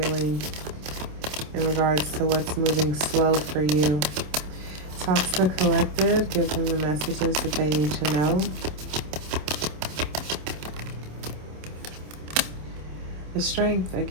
In regards to what's moving slow for you? Talk to the collective. Give them the messages that they need to know. The strength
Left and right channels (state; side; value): late; left; 27 ms